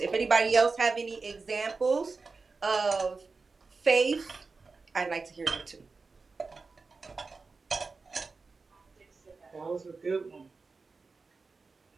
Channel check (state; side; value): quieter; left; 4.2 dB